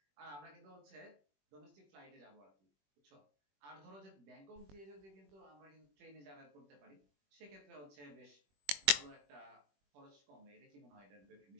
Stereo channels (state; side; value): late; left; 21 ms